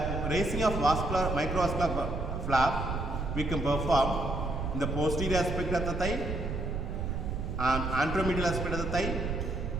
raising of microvascular flap we can perform in the posterior aspect of the thigh, anteromedial aspect of the thigh,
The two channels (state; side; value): noise; right; rumble, 3 dB below the sound